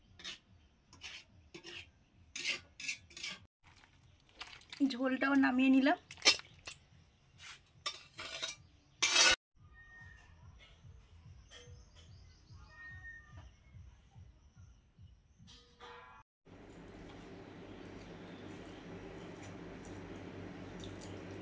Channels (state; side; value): identical; both; correlation 1.00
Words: ঝোলটাও নামিয়ে নিলাম।